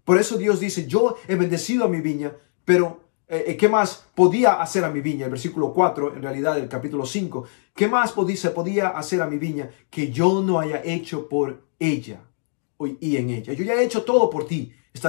Por eso Dios dice, yo he bendecido a mi viña, pero ¿qué más podía hacer a mi viña? El versículo 4, en realidad del capítulo 5, ¿qué más se podía hacer a mi viña que yo no haya hecho por ella y en ella? Yo ya he hecho todo por ti,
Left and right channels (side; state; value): right; silent; digital silence